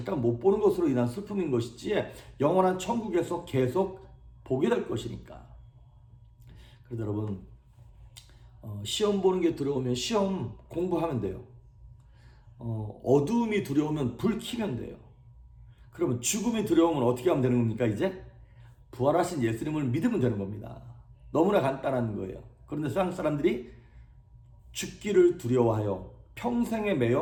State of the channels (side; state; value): both; identical; correlation 1.00